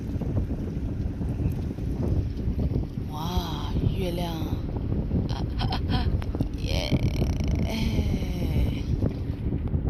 月亮，耶！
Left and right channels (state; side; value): identical; both; correlation 1.00